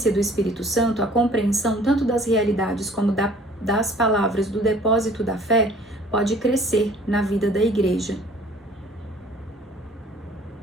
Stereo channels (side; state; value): both; normal; correlation 0.53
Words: do Espírito Santo, a compreensão tanto das realidades como das palavras do depósito da fé pode crescer na vida da Igreja.